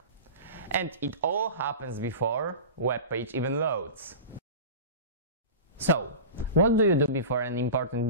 And it all happens before web page even loads. So, what do you do before an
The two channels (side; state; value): both; inverted; correlation -0.33